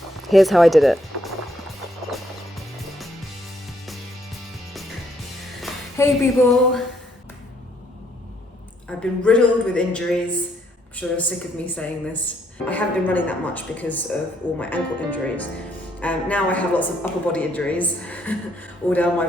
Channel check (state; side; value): normal; both; correlation 0.70